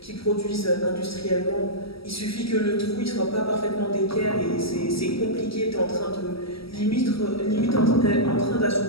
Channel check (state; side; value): late; right; 0.75 ms